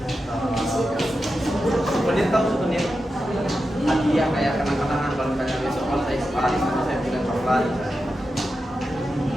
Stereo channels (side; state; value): both; normal; correlation 0.90